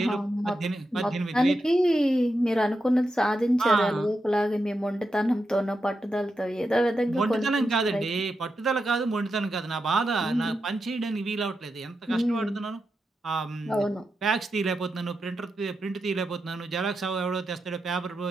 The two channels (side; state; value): both; normal; correlation 0.87